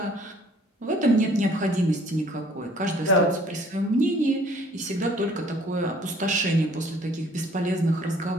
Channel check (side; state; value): both; normal; correlation 0.57